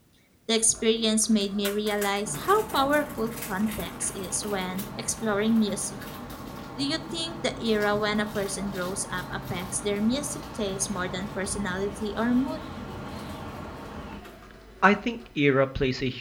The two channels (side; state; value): both; identical; correlation 1.00